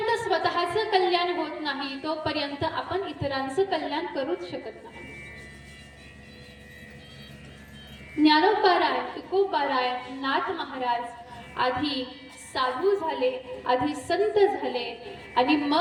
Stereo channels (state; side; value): identical; both; correlation 1.00